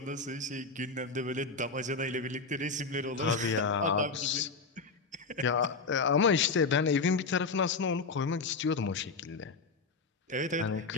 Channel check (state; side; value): quieter; right; 4.3 dB